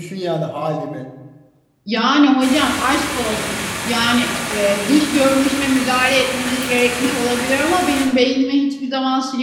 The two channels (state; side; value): identical; both; correlation 1.00